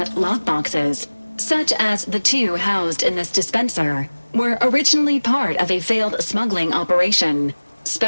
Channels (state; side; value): inverted; both; correlation -1.00